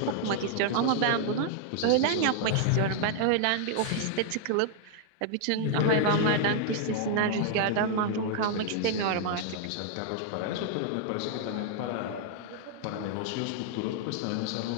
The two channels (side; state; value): both; different; correlation 0.00